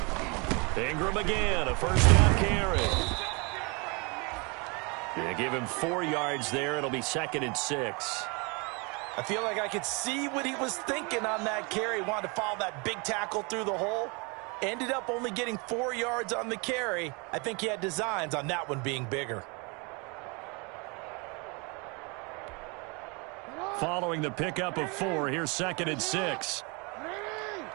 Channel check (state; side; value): quieter; left; 30.4 dB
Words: Ingram again, a first down carry. They give him 4 yards there. It'll be 2nd and 6. I feel like I could see what he was thinking on that carry. Wanted to follow that big tackle through the hole. Ended up only getting 4 yards on the carry. I think he had designs on that one being bigger. Following the pickup of 4, here's 2nd and 6.